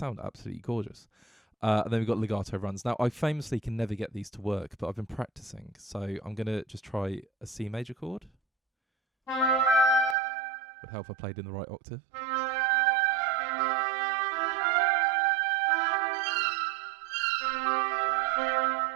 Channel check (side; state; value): left; drops out; at 10.2 s